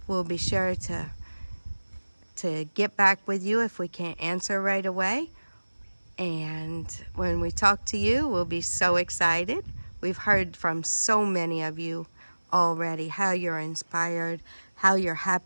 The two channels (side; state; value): both; inverted; correlation -1.00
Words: we'll be sure to get back with you if we can't answer right away. And when we talk to you, we'll be so excited. We've heard from so many of you already how you're inspired, how you're